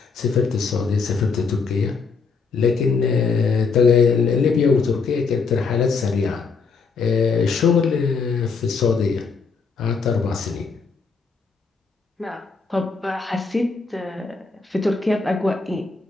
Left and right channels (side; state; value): right; quieter; 4.9 dB